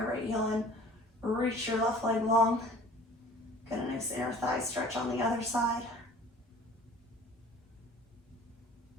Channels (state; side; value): normal; both; correlation 0.48